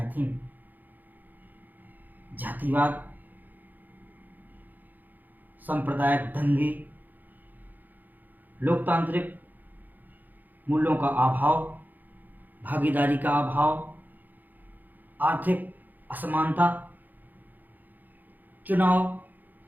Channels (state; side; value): late; left; 0.085 ms